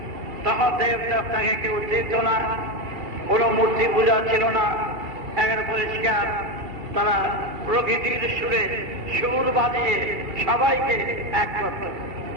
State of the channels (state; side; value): late; left; 2.7 ms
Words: তখন দেবদেবতাকে কেউ চিনত না, কোনো মূর্তি পূজা ছিল না, একের পরিষ্কার তারা প্রকৃতির সুরে সুর বাজিয়ে সবাইকে এক করত।